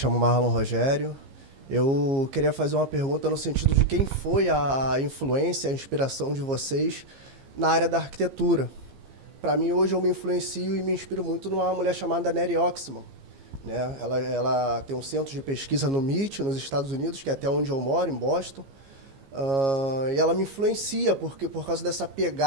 Marlon Rogério. Eu queria fazer uma pergunta no sentido de quem foi a influência, a inspiração de vocês na área da arquitetura. Para mim, hoje, eu me influencio e me inspiro muito numa mulher chamada Neri Oxman, né? Ela tem um centro de pesquisa no MIT, nos Estados Unidos, que é até onde eu moro, em Boston. E ela me influencia por causa dessa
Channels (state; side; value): late; left; 15 ms